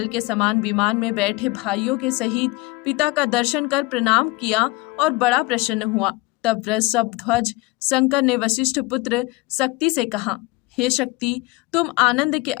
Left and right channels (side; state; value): right; quieter; 22.6 dB